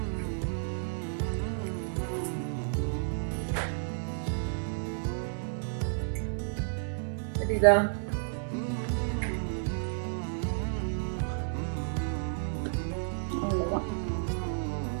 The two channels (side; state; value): left; silent; 57 dB below the other